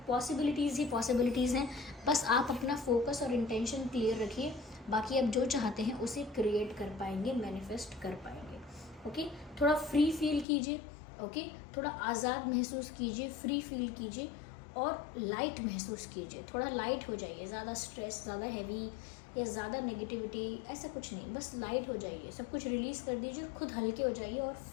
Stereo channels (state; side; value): drops out; right; at 10.5 s